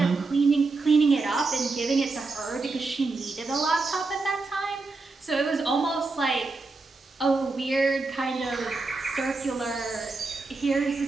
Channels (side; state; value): left; quieter; 3.7 dB